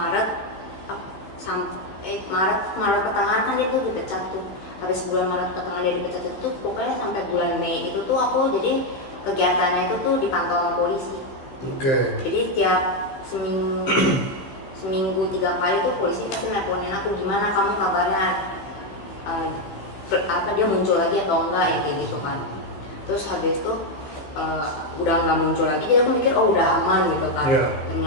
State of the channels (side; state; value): right; late; 16 ms